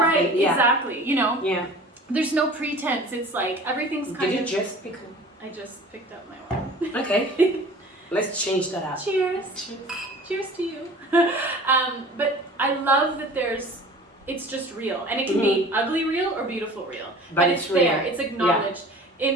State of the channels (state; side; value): normal; both; correlation 0.43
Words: Right, and, exactly. You know, Yeah. there's no pretense. It's like everything's kind Did of. you just pick? I just picked up my wine. Okay. Let's change that up. Cheers. Cheers to you. But I love that it's just real, and it can be ugly real or beautiful real, but it's there. It's acknowledged. Yeah.